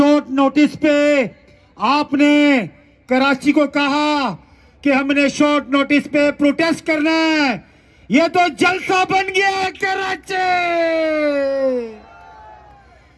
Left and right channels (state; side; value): identical; both; correlation 1.00